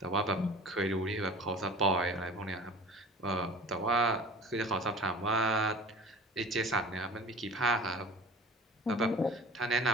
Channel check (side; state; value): both; normal; correlation 0.41